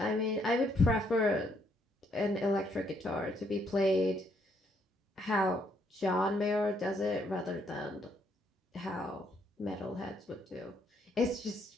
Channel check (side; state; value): both; normal; correlation 0.71